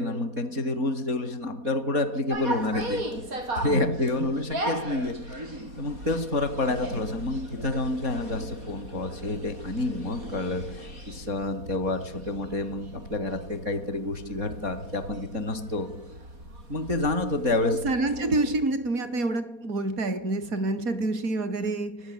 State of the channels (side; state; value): left; late; 4.2 ms